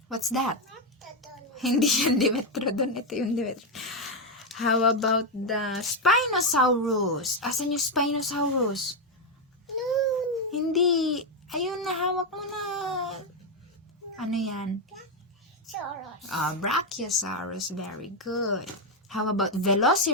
What's that? Hindi yan Dimetrodon. Ito yung Dimetrodon. How about the Spinosaurus? Asan yung Spinosaurus? No. Hindi. Ayun, nahawak mo na. Ano yan? Saros. Brachiosaurus. Very good. How about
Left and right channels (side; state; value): both; normal; correlation 0.05